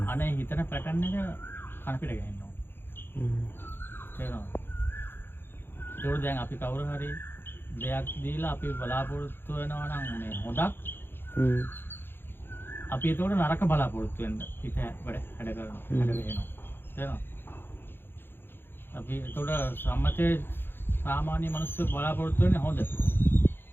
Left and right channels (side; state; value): right; late; 0.10 ms